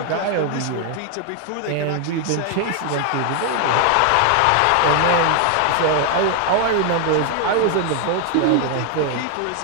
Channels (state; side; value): different; both; correlation 0.00